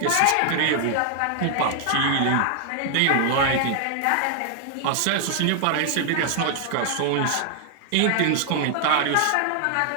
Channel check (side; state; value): both; different; correlation 0.00